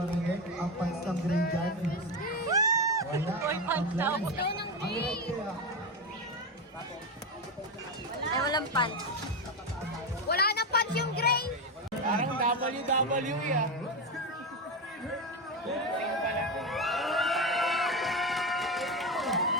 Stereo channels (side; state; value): both; normal; correlation 0.14